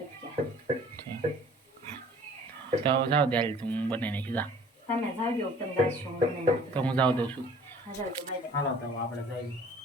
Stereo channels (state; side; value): normal; both; correlation 0.51